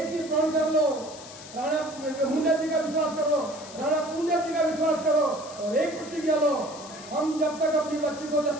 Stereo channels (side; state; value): left; noise; hiss, 16 dB below the sound